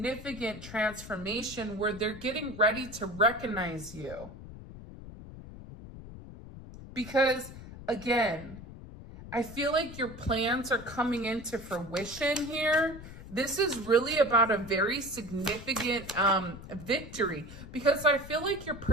transformation where they're getting ready to recognize you. Because, again, I feel like your plans are coming into fruition here. This is really about a very significant victory, because I feel like your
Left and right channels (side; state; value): left; noise; rumble, 14 dB below the sound